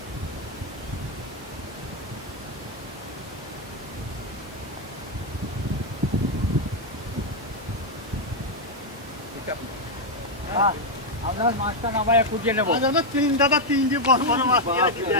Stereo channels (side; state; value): both; normal; correlation 0.01